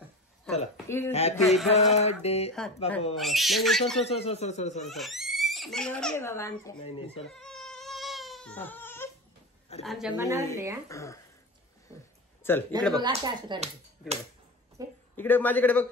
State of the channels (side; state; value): both; normal; correlation 0.25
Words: चला हॅपी बर्थडे. बाबा नाही sir sir sir sir sir sir sir बाबा आमच्या. नाही नाही सर आमच्या मनावरले. चल इकडे बघ. असं करायचं इकडे बघ. इकडे माझ्याकडे बघ.